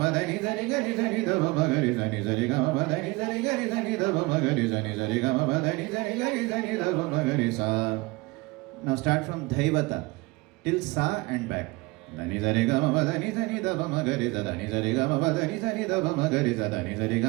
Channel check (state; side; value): quieter; left; 23.4 dB